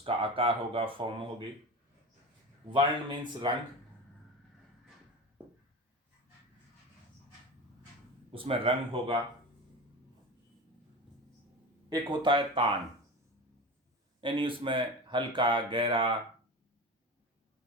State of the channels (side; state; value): both; normal; correlation 0.28